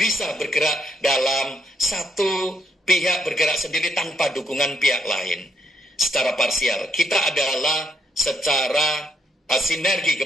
bergerak dalam satu pihak bergerak sendiri tanpa dukungan pihak lain. Secara parsial, kita adalah secara sinergi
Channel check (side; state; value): both; normal; correlation 0.75